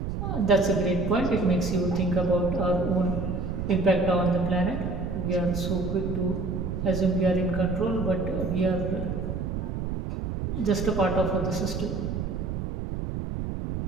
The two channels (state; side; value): noise; right; rumble, 3 dB below the sound